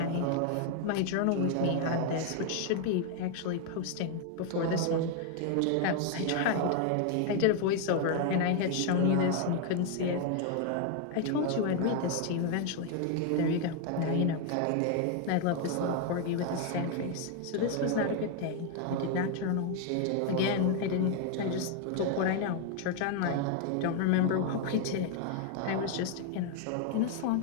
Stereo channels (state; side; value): different; both; correlation 0.00